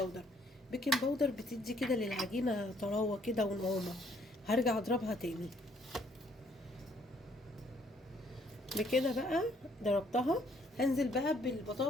بيكنج باودر بتدي كده للعجينة طراوة كده ونعومة. هرجع اضربها تاني. بكده بقى ضربتها. هنزل بقى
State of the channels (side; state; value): both; normal; correlation 0.66